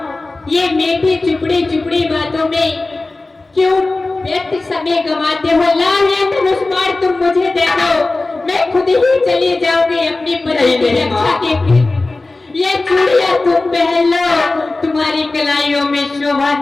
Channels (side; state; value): right; quieter; 3.2 dB